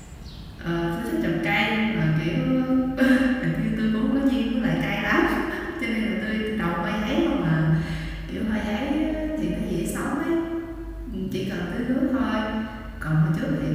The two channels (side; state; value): both; identical; correlation 1.00